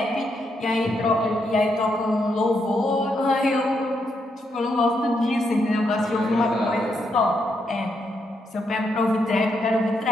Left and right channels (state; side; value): normal; both; correlation 0.79